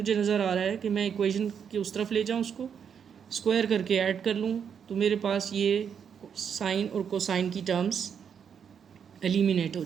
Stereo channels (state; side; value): quieter; left; 7.5 dB